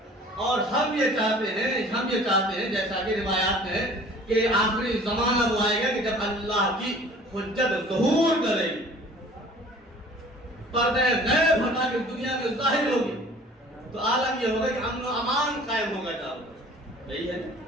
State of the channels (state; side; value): normal; both; correlation 0.49